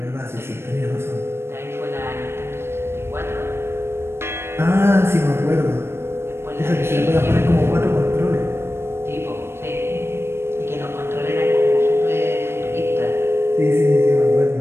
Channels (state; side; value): late; left; 0.12 ms